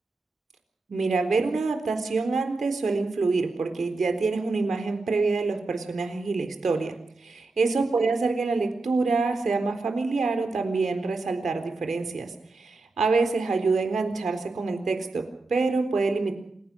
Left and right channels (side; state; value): left; quieter; 3.6 dB